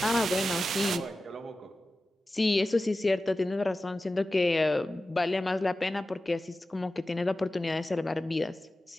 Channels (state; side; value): normal; both; correlation 0.95